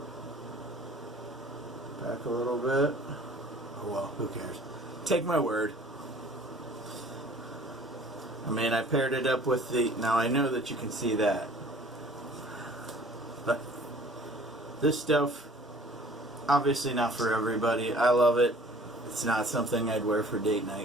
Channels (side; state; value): both; normal; correlation 0.51